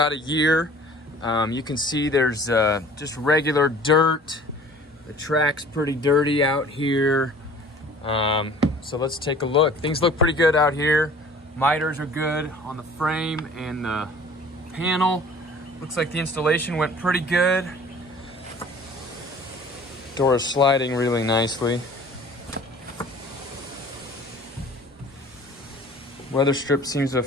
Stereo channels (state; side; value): normal; both; correlation 0.48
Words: a year. You can see there's just regular dirt. The track's pretty dirty out here. So let's take a look. Things look pretty good out here. Miters are good on the frame and the panel. Looks like the installation went pretty good. Door is sliding really nicely. Weather strip seems to have